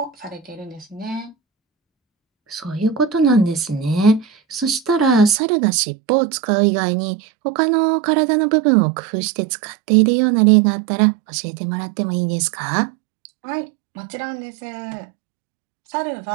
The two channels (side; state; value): left; drops out; at 5.4 s